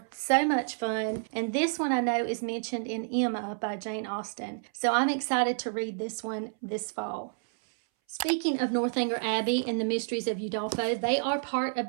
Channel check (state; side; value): silent; left; 58 dB below the other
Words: So much fun. And this one I know is mentioned in Emma by Jane Austen. So I'm excited to read this one this fall. Speaking of Northanger Abbey and the Mysteries of Udolpho, they are part of